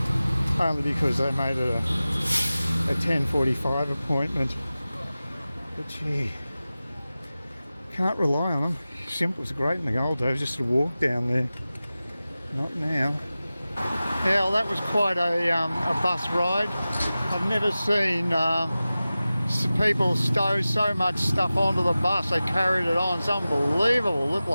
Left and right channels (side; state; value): both; inverted; correlation -0.96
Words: only because they made it a 10:45 appointment. But gee, can't rely on them. Simple was great in the old days, just to walk down there. Not now. Yeah, well, that was quite a bus ride. I've never seen people stow so much stuff onto the bus. They carried it on. It's unbelievable. It looked